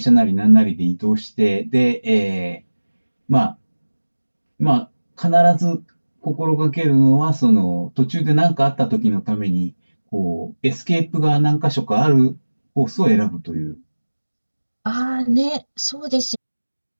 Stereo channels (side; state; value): both; inverted; correlation -1.00